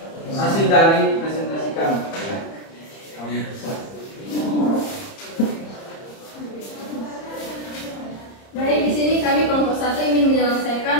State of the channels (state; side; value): late; right; 30 ms